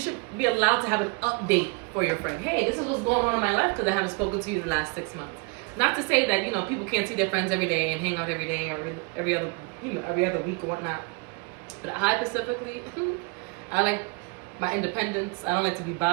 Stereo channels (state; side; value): quieter; left; 31.2 dB